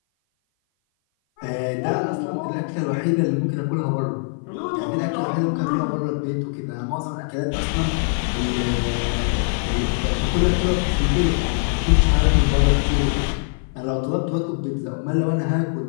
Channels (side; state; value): right; silent; 57 dB below the other